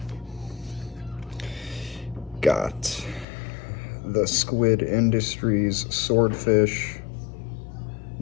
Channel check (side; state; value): right; drops out; at 3.2 s